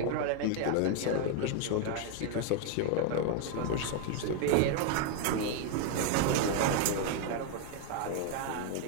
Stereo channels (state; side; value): different; both; correlation 0.00